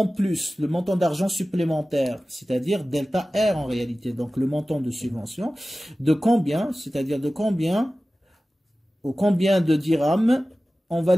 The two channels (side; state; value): both; normal; correlation 0.96